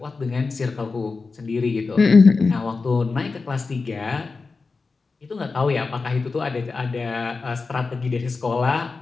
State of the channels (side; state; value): right; quieter; 4.2 dB